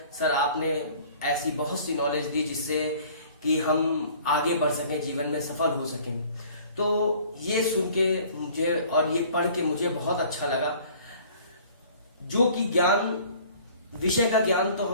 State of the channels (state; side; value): inverted; both; correlation -0.51